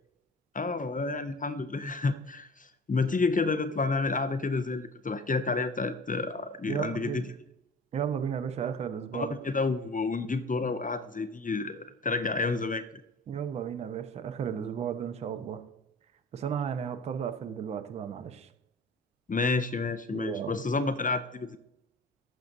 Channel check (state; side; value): normal; both; correlation 0.41